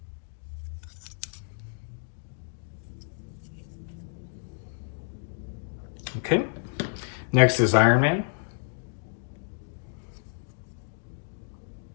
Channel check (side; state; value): right; silent; digital silence